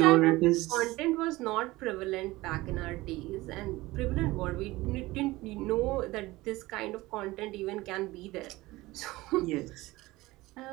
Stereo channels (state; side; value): quieter; left; 19.6 dB